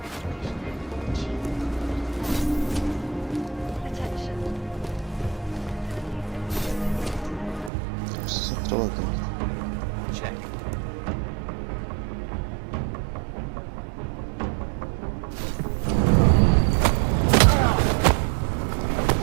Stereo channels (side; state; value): left; drops out; at 7.7 s